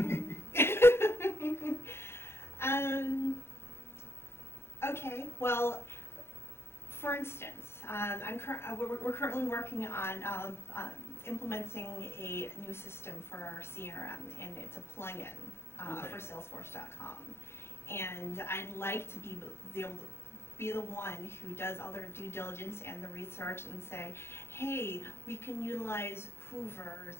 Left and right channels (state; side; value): late; right; 0.12 ms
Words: Okay, well, for instance, we're currently working on implementing a new system for our CRM, and it's a plugin for Salesforce.com. And I'd like to be able to be the one who does all their due diligence and the research and say, hey, we can utilize